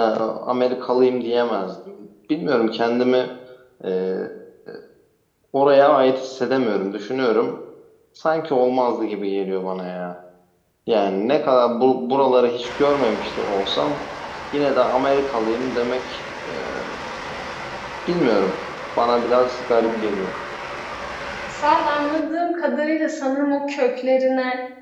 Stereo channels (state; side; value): identical; both; correlation 1.00